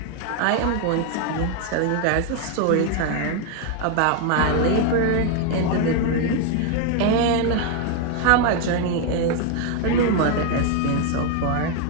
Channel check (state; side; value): different; both; correlation 0.01